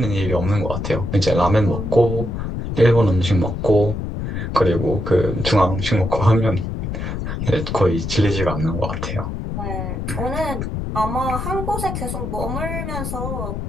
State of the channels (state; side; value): noise; left; rumble, 4 dB below the sound